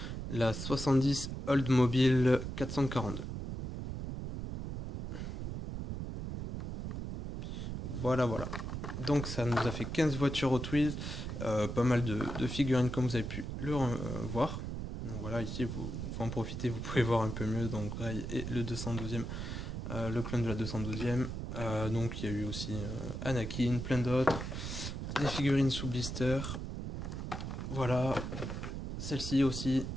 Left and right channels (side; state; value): right; noise; rumble, 5 dB below the sound